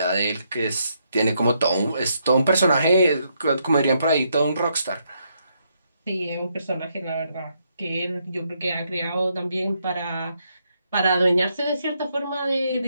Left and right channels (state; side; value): inverted; both; correlation -0.76